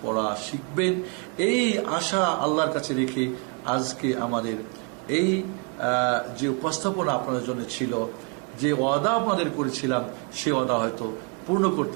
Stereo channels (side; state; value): left; quieter; 35.0 dB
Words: পড়া শিখবেন। এই আশা আল্লাহর কাছে রেখে আজকে আমাদের এই যে উপস্থাপনা আপনাদের জন্য ছিল, যে ওয়াদা আপনাদের করেছিলাম, সে ওয়াদা হয়তো পূর্ণ